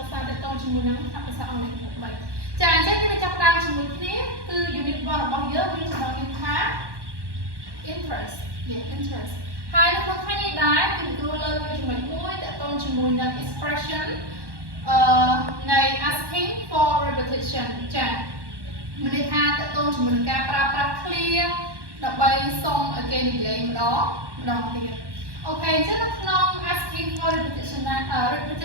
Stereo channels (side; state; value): left; late; 1.1 ms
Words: ក្សាទាក់ទងជាមួយនឹងខ្លឹមភាសាអង់គ្លេសកម្រិត3ចាអញ្ចឹងយើងចាប់ផ្ដើមជាមួយគ្នាគឺ unit 1របស់យើងមានចំណងជើងថា interest interest ហើយនៅក្នុងថ្ងៃនេះដែរគឺគ្រូលើកយកចំណុចមួយទាក់ទងជាមួយនឹង expression នៃ asking for repetition ចាមានន័យថាទាក់ទងជាមួយនឹងការប្រើប្រាស់ clear ដើម្បីសុំឲ្យគេនិយាយម្ដងទៀតអូខេអញ្ចឹងនៅក្នុង asking for repetition ហ្នឹង